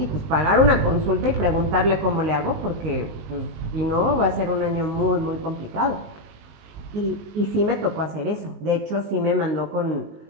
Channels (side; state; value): left; late; 19 ms